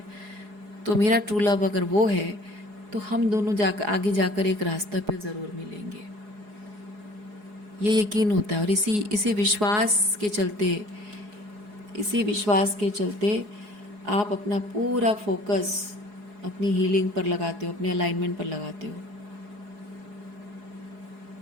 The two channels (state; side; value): late; left; 4.8 ms